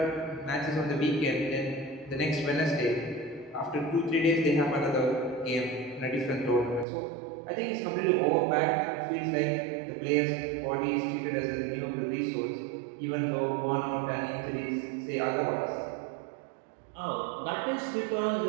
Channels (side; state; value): left; drops out; at 6.9 s